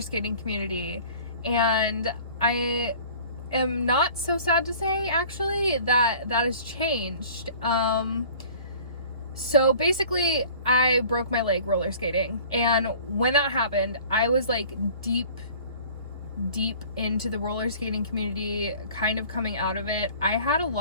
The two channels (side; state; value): both; inverted; correlation -0.47